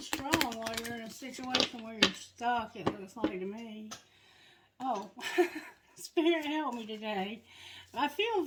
while you're in a situation where you're stuck, it looks like to me. Oh, Spirit help me today. I feel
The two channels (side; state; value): both; identical; correlation 1.00